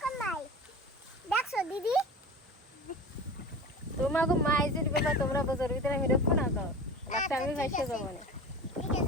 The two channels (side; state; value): both; normal; correlation 0.33